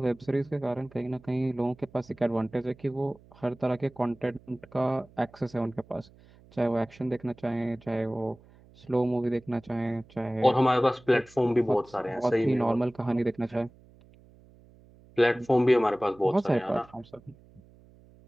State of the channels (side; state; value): right; noise; hum, 26 dB below the sound